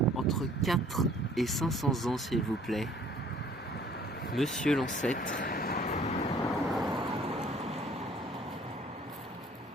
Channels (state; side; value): normal; both; correlation 0.56